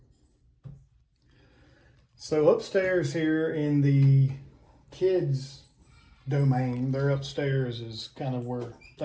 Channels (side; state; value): both; identical; correlation 1.00